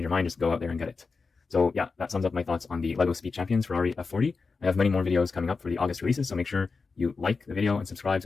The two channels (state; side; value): quieter; right; 4.5 dB